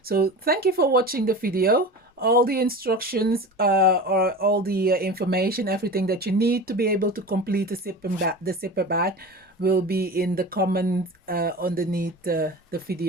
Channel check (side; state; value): both; normal; correlation 0.32